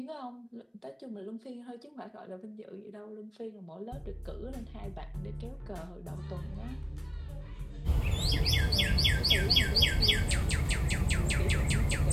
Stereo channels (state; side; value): identical; both; correlation 1.00